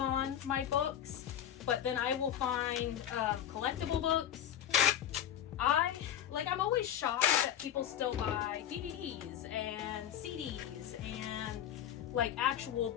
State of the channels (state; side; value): quieter; right; 10.5 dB